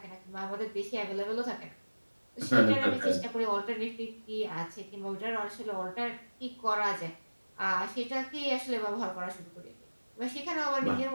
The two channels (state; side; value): inverted; both; correlation -1.00